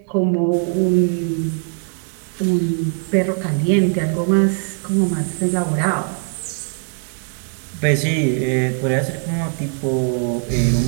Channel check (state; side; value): silent; left; 55 dB below the other